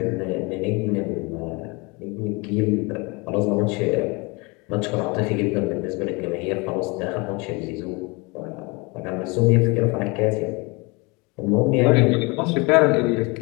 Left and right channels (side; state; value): right; quieter; 27.7 dB